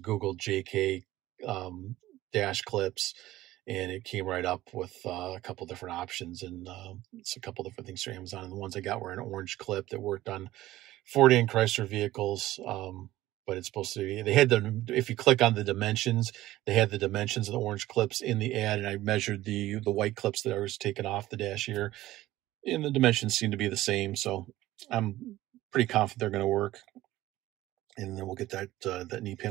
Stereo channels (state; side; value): quieter; left; 15.8 dB